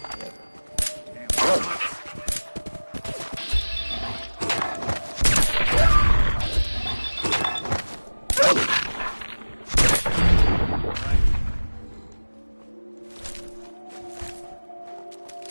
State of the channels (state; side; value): inverted; both; correlation -1.00